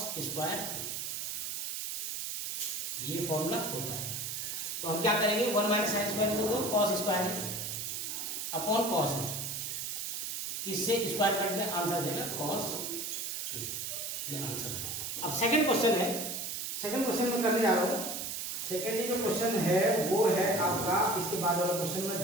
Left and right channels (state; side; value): noise; right; hiss, 4 dB below the sound